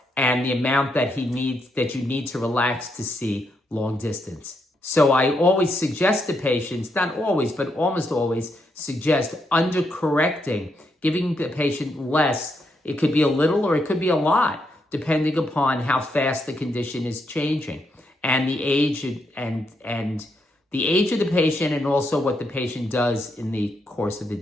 and the amount that you need to relax to see long distance. So I always suggest to patients, not always, but almost always suggest undercorrecting, giving the patient less. It could be a little or it could be a lot, depending upon how fast the condition is changing and the age and the age of the patient, and also what the patient does in the course of the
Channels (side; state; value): both; normal; correlation 0.79